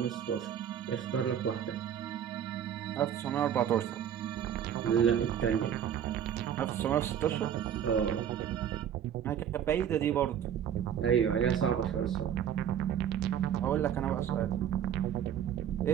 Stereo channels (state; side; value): quieter; left; 9.3 dB